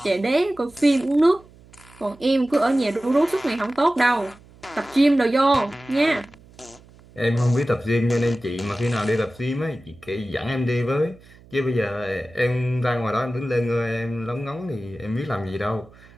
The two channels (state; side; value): noise; right; hum, 25 dB below the sound